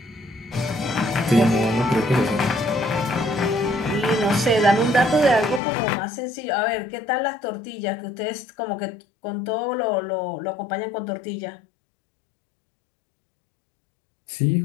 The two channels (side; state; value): right; drops out; at 5.6 s